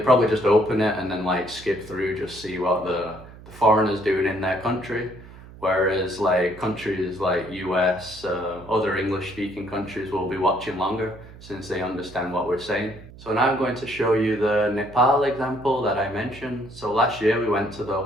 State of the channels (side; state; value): right; noise; hum, 18 dB below the sound